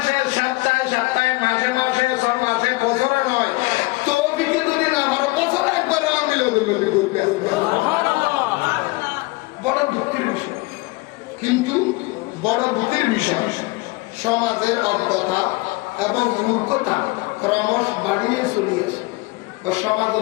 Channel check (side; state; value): right; quieter; 23.4 dB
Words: সপ্তাহে সপ্তাহে মাসে মাসে 6 মাসে বছরে নয় বড় দুঃখের বিষয়, কিন্তু বড় দুঃখের বিষয় সমাজের অজ্ঞতা এবং মূর্খতা ক্রমশ বাড়িয়ে চলিয়েছে।